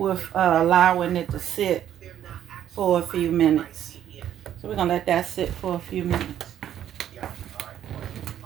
allowing it to sit for a few minutes. So we're gonna let that sit for a few minutes.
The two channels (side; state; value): left; quieter; 10.7 dB